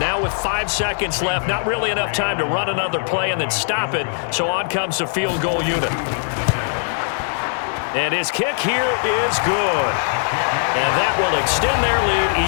with 5 seconds left, not really enough time to run another play and then stop it, so on comes the field goal unit. And his kick here is good. And that will extend their lead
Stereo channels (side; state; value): right; silent; 59 dB below the other